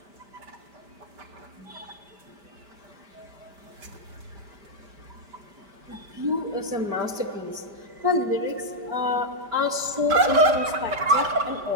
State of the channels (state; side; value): late; left; 5.0 ms